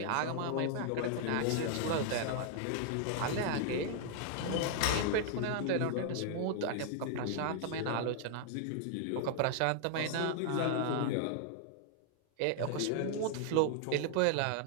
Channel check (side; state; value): both; different; correlation 0.00